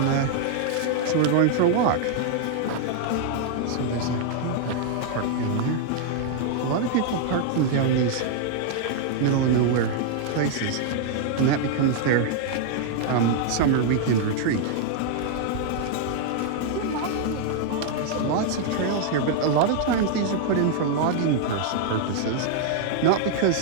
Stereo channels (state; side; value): different; both; correlation 0.00